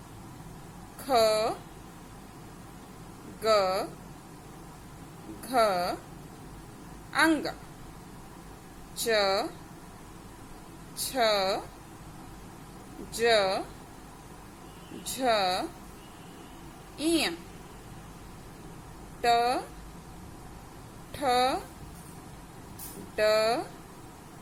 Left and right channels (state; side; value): identical; both; correlation 1.00